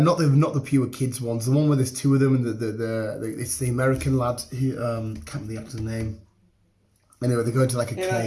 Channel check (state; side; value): identical; both; correlation 1.00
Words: not the pure kids ones, the one where there's two of them, and it's the American lad who can't remember the actor's name. Anyway, they go into like a